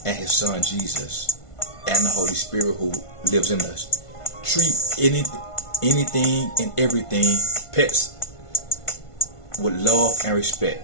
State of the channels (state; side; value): late; right; 1.5 ms